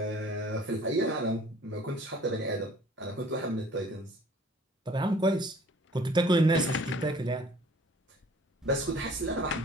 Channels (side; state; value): both; normal; correlation 0.52